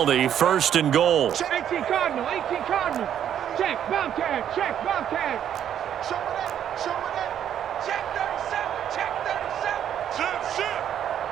1st and goal. 18 Cardinal, 18 Cardinal. Check, Bobcat, check, Bobcat. Show it. Check 37.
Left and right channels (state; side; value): quieter; left; 9.8 dB